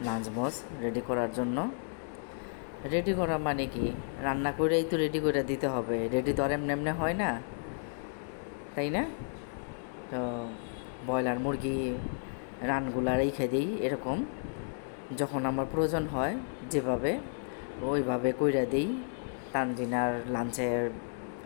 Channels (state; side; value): silent; right; digital silence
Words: নাজমোজ রেডি করার জন্য। রেডি করা মানে কি, রান্না করেই তো রেডি করে দিতে হবে, রেডি তো আর এমনি এমনি হয় না, তাই না? তো ব্রয়লার মুরগি রানগুলা রেখে দিই এরকম, যখন আমার প্রয়োজন হয় যেভাবে ওইভাবে কইরা দিই। তানজিনার লাঞ্চের